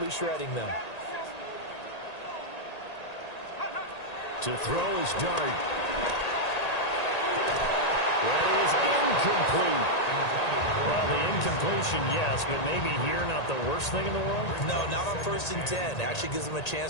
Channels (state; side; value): late; right; 1.8 ms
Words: shredding them. To throw is Dart. That is incomplete. Well, the incompletion, yes, but maybe here not the worst thing in the world? No, not on 1st and 10. Actually gives them a